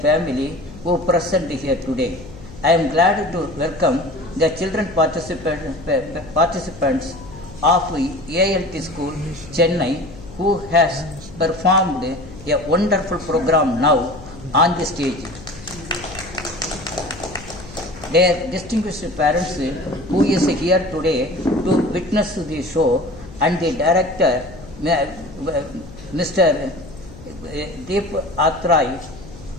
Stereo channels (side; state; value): left; noise; hum, 17 dB below the sound